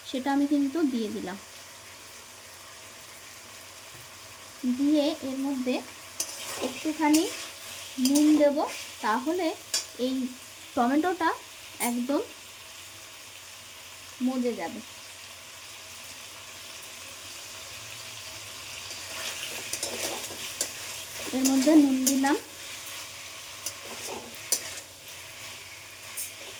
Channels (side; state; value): both; identical; correlation 1.00